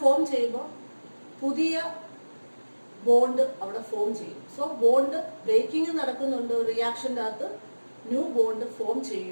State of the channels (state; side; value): inverted; both; correlation -1.00